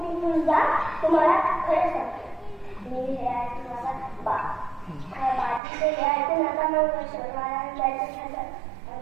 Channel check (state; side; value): drops out; left; at 5.6 s